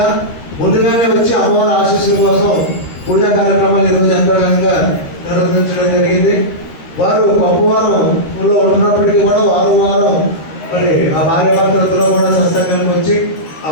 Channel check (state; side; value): late; right; 13 ms